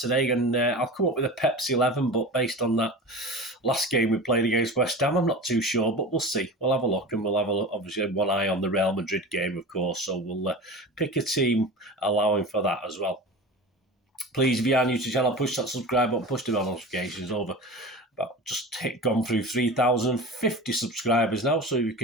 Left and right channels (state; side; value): normal; both; correlation 0.32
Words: and I'll come up with a Pepsi 11, but based on that last game we played against West Ham, I'm not too sure, but we'll see. We'll have a look, and we'll have obviously one eye on the Real Madrid game, of course, so we'll pick a team allowing for that as well. Please, if you are new to the channel, push that subscribe button, push the bell notifications over. Gone through 3,050 subscribers now, so you